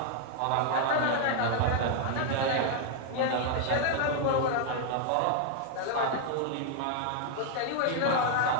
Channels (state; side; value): different; both; correlation 0.00